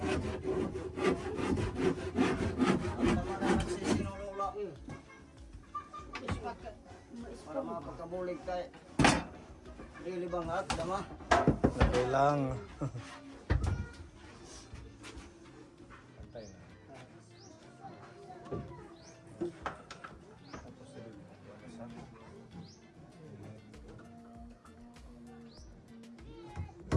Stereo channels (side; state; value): both; identical; correlation 1.00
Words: Para makapagkabulig kay Really bangat, dama. Okay lang.